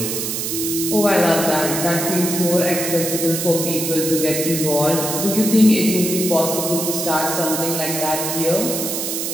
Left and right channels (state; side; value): noise; right; hiss, 3 dB below the sound